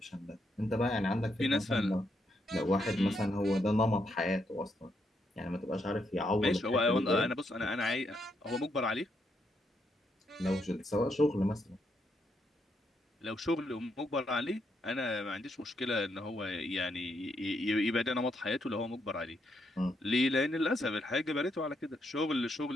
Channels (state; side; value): normal; both; correlation 0.78